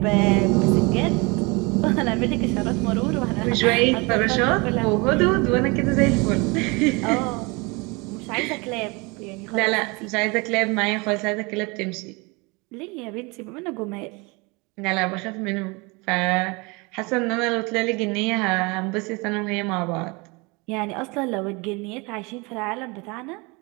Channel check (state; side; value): quieter; left; 27.3 dB